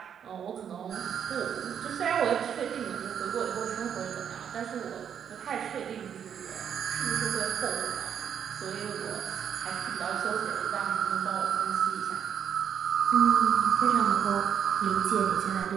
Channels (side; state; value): left; quieter; 8.4 dB